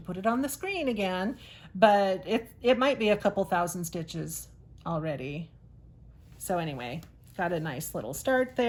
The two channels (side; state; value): both; identical; correlation 1.00